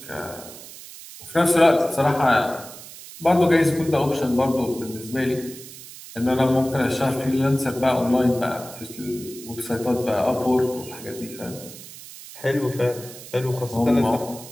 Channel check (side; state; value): right; noise; hiss, 15 dB below the sound